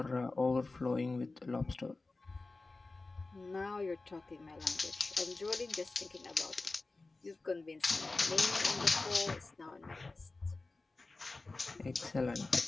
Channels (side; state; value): right; quieter; 3.5 dB